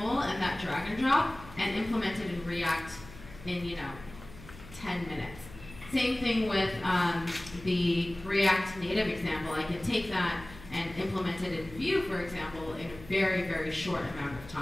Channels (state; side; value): noise; left; hum, 17 dB below the sound